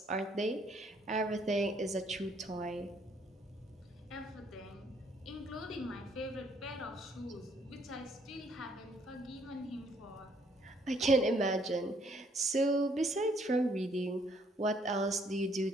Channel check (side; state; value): both; normal; correlation 0.67